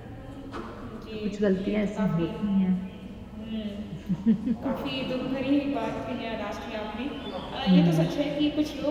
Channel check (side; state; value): both; identical; correlation 1.00